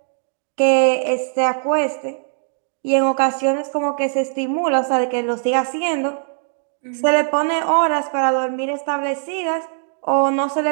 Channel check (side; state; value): left; silent; digital silence